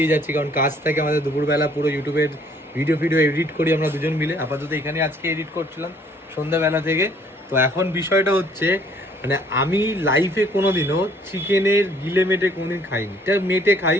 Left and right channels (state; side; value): normal; both; correlation 0.60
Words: যাচ্ছি, কারণ কাজ থাকে আমাদের দুপুরবেলা। পুরো ইউটিউবের ভিডিও এডিট করি আমরা দুজন মিলে। আপাতত এখানে আজকে এডিট করছিলাম সন্ধ্যাবেলা থেকে। তো এখন বিষয়টা হচ্ছে, মানে আমি লাইফে কোনোদিনও চিকেনের গিলে মেটে কোনোদিন খাইনি। এটা মেটে খাই,